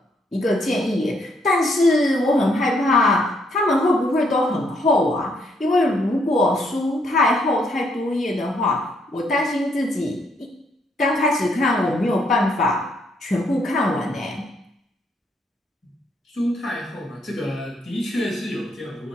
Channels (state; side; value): normal; both; correlation 0.72